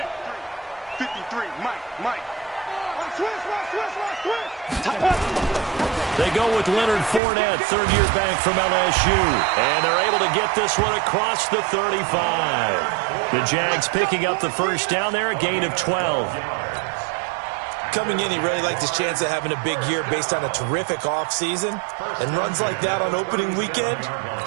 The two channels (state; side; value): drops out; left; at 7.2 s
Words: 53, Mike. Switch. They go with Leonard Fournette, third-year back from LSU. And they're able to get this one across the 35. The Jags picking up the first down there, a gain of 12. Coming in, he really liked his chance of having a big year based on a terrific offseason. And runs like that on opening weekend